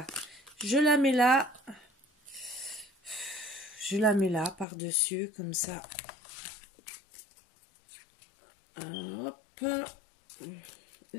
Je la mets là. Je la mets là, par-dessus, comme ça. Hop.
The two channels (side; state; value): right; drops out; at 4.7 s